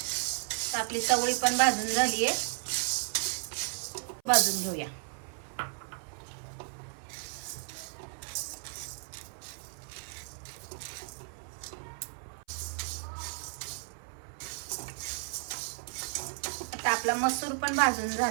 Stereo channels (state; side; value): silent; left; 55 dB below the other